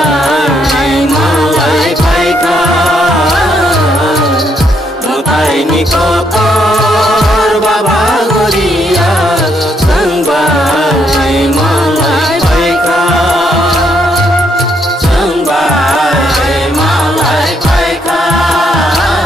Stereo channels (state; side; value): normal; both; correlation 0.74